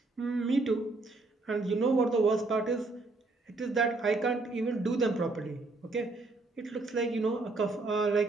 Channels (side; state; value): left; quieter; 3.3 dB